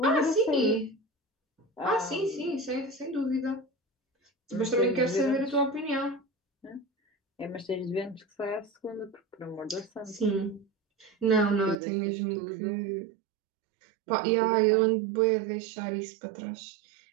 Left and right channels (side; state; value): left; drops out; at 11.8 s